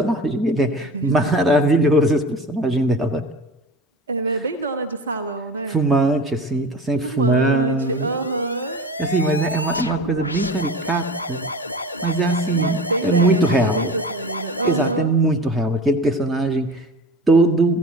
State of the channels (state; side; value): normal; both; correlation 0.35